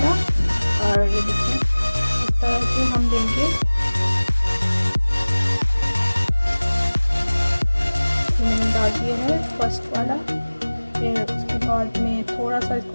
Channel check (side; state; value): both; inverted; correlation -1.00